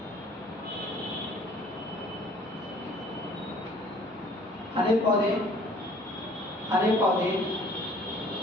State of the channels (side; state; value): both; normal; correlation 0.54